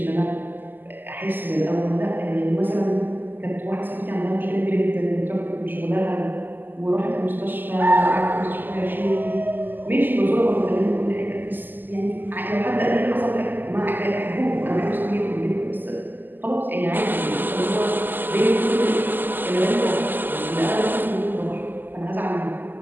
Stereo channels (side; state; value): left; late; 0.090 ms